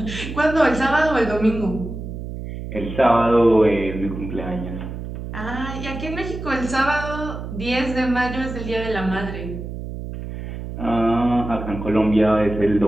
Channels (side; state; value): right; noise; hum, 8 dB below the sound